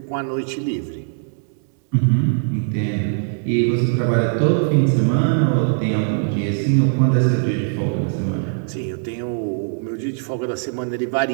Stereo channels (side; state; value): left; silent; 65 dB below the other